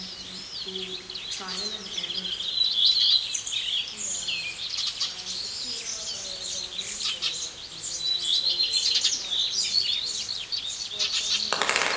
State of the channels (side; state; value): both; identical; correlation 1.00